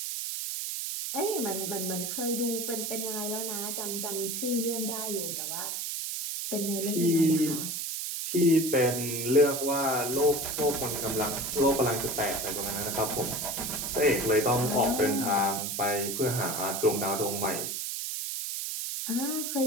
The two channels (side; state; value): right; noise; hiss, 3 dB below the sound